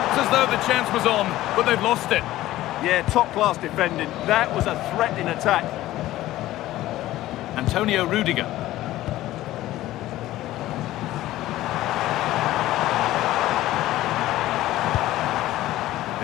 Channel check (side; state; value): right; quieter; 15.4 dB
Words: as though the chance was on, but they've lost it. Yeah, top-class defending. That was a threat in attack. Antonio Rudiger.